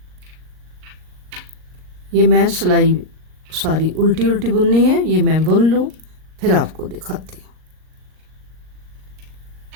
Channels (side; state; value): left; late; 38 ms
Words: ये मैं सिलाई सारी उल्टी उल्टी बुननी है, ये मैं बुन लूँ फिर आपको दिखाती हूँ।